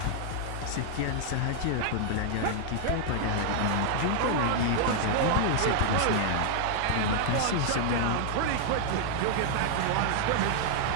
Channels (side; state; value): both; different; correlation -0.01